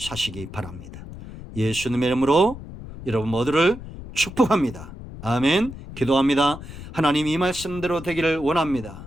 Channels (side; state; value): left; noise; rumble, 13 dB below the sound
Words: 바랍니다. 예수님의 이름으로 여러분 모두를 축복합니다. 아멘. 기도합니다. 하나님, 이 말씀대로 되기를